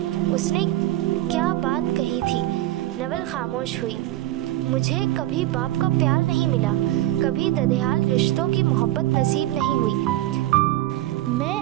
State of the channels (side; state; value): left; quieter; 15.3 dB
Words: उसने क्या बात कही थी? नवल खामोश हुई। मुझे कभी बाप का प्यार नहीं मिला, कभी ददेहाल रिश्तों की मोहब्बत नसीब नहीं हुई। मैं